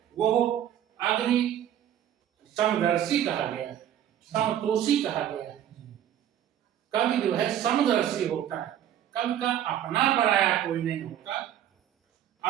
वो अग्नि समदर्शी कहा गया है, समतोषी कहा गया है। कवि जो है समदर्शी होता है, कवि का अपना पराया कोई नहीं होता।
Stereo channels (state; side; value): quieter; left; 10.8 dB